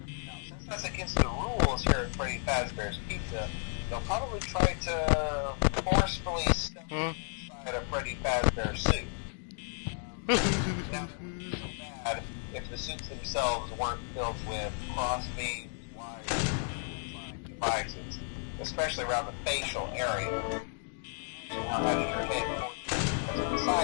Now, since that's against the rules here at Freddy Fazbear's Pizza, they'll probably try to forcefully stuff you inside a Freddy Fazbear suit. Now, that wouldn't be so bad if the suits themselves weren't filled with cross beams, wires, and electronic devices, especially around the facial area. So you can imagine how having your head forcibly pressed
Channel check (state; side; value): silent; right; 56 dB below the other